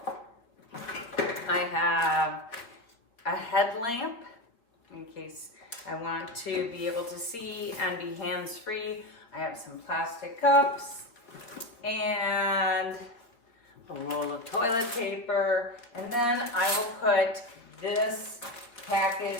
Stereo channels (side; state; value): right; late; 4.0 ms